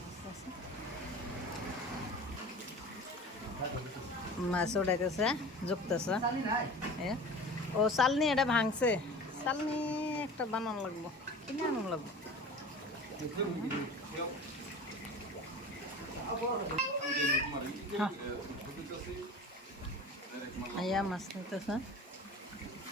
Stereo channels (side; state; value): both; normal; correlation 0.37